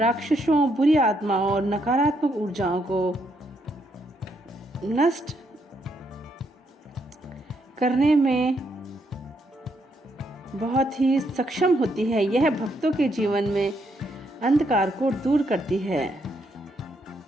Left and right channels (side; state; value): both; normal; correlation 0.75